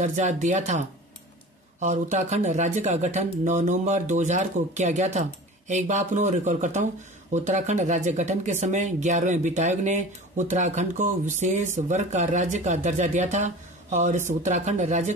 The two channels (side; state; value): both; normal; correlation 0.38